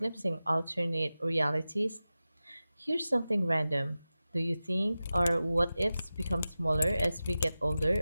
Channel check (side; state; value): both; inverted; correlation -0.94